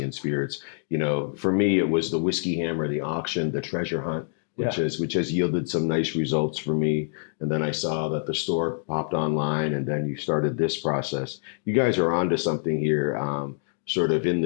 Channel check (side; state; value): right; silent; digital silence